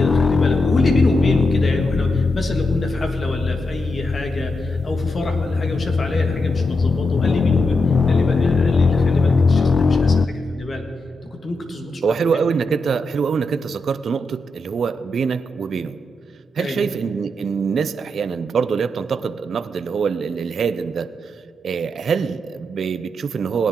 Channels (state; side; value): normal; both; correlation 0.85